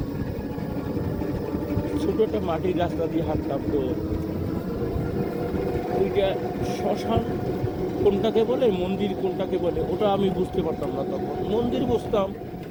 ছোটো একটা মাটির রাস্তা দিয়ে হাঁটতাম। তো ওইটা শ্মশান কোনটাকে বলে, মন্দির কোনটাকে বলে, ওটা আমি বুঝতে পারতাম না তখন। মন্দির বুঝতাম,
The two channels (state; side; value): identical; both; correlation 1.00